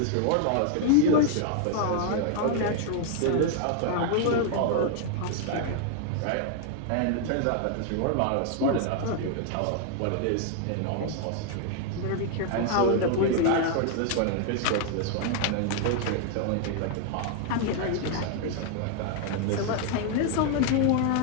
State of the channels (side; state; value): both; different; correlation 0.00